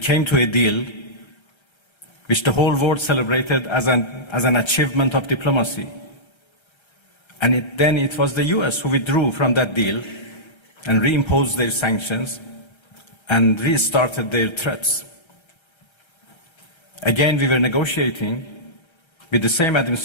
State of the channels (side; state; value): right; late; 1.3 ms